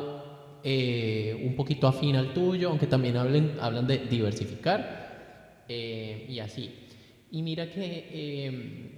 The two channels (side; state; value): both; identical; correlation 1.00